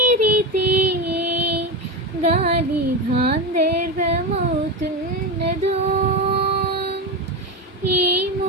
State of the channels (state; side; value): normal; both; correlation 0.17